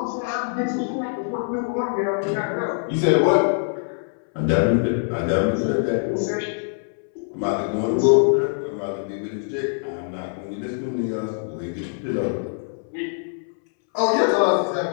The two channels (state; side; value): silent; right; 63 dB below the other